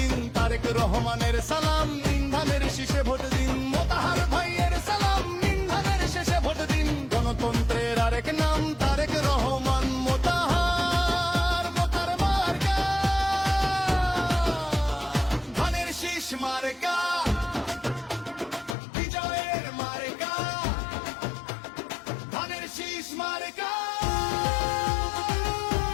তারেক রহমানের সালাম নিন, ধানের শীষে ভোট দিন। মোতাহার ভাইয়ের সালাম নিন, ধানের শীষে ভোট দিন। গণতন্ত্রের আরেক নাম তারেক রহমান। মোতাহার মোতার মার্কা, ধানের শীষ মার্কা, বিজয়ের মার্কা, ধানের শীষ মার্কা।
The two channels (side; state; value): right; drops out; at 18.8 s